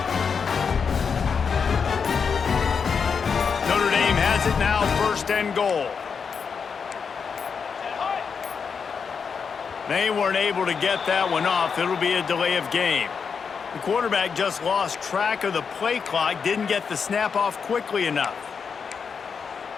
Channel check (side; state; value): right; quieter; 6.0 dB